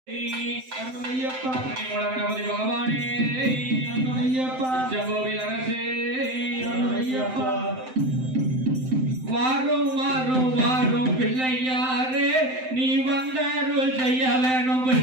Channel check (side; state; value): left; late; 7.8 ms